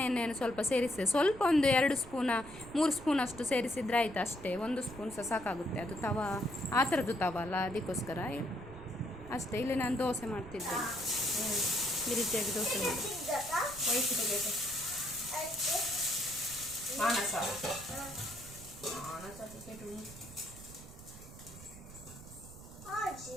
ಎಣ್ಣೆಯನ್ನು ಸ್ವಲ್ಪ ಸೇರಿಸಿದೆ, ಸ್ವಲ್ಪ ಒಂದು 2 ಸ್ಪೂನ 3 ಸ್ಪೂನ್ ಅಷ್ಟು ಸೇರಿಸಿದ್ರೆ ಆಯಿತು ಅಷ್ಟೇ. 1 ಸ್ಪೂನ್ ಸಹ ಸಾಕಾಗುತ್ತೆ, ಅದು ತವ ಆ ಥರದ್ದು ತವ ಅಲ್ಲ, ಅದಕ್ಕೋಸ್ಕರ ಅಷ್ಟೇ. ಇಲ್ಲಿ ನಾನು ದೋಸೆ ಮಾಡ್ತಿದ್ದೆ, ಈ ರೀತಿಯಾಗಿ ದೋಸೆ ಮಾಡಿ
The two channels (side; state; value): right; noise; rumble, 16 dB below the sound